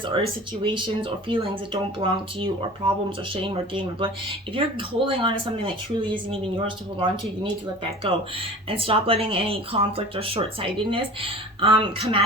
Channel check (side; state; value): both; normal; correlation 0.40